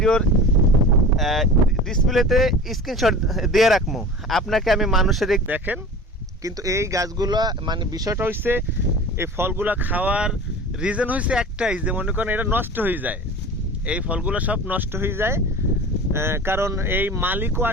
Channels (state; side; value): normal; both; correlation 0.36